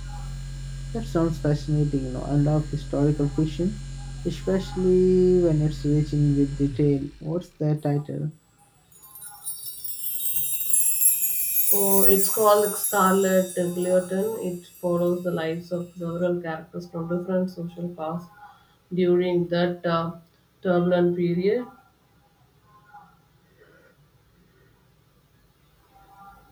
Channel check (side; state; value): both; identical; correlation 1.00